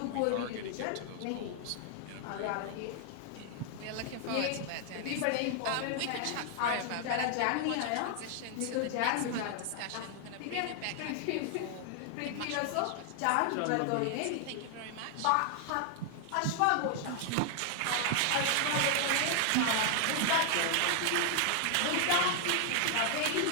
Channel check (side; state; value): both; different; correlation 0.00